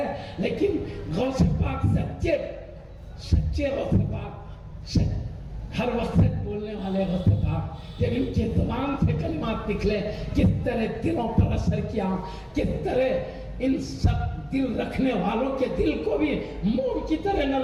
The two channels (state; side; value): identical; both; correlation 1.00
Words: لیکن غوث پاک سچے غوث پاک, ہر وقت بولنے والے غوث پاک, جب ان کی زبان سے کلمات نکلے کس طرح دلوں پر اثر کیا, کس طرح ان سب دل رکھنے والوں کے دل کو بھی موم کی طرح